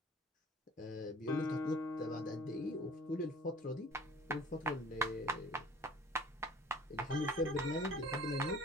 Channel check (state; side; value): normal; both; correlation 0.49